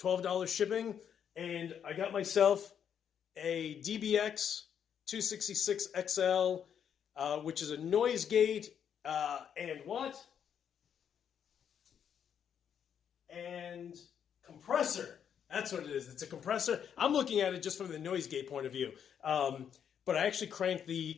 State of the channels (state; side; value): quieter; right; 8.3 dB